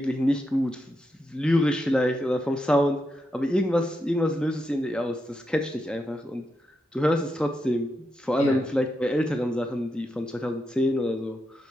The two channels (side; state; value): both; normal; correlation 0.85